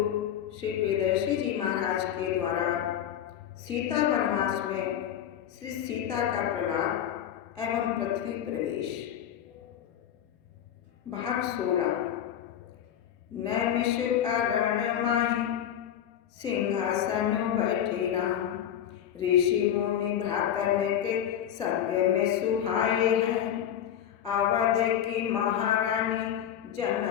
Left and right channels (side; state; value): right; quieter; 10.1 dB